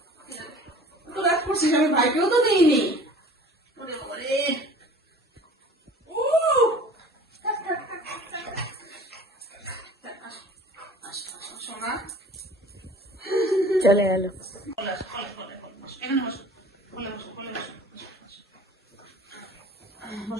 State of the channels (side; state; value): both; normal; correlation 0.46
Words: তো রাগ করছিস আমি ভাইকেও তো দিইনি। ওরে ওরে চলে গেল।